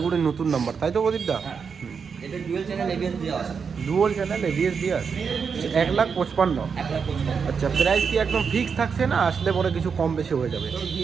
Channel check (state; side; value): quieter; left; 6.0 dB